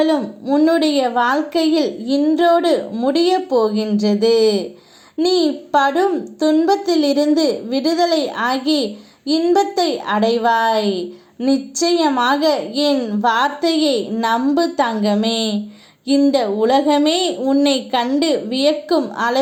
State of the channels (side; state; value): both; identical; correlation 1.00